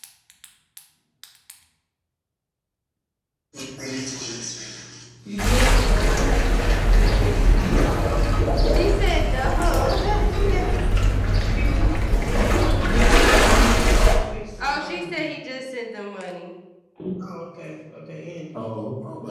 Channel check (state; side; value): identical; both; correlation 1.00